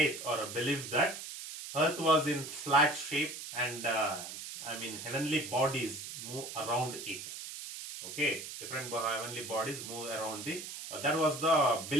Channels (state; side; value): noise; right; hiss, 9 dB below the sound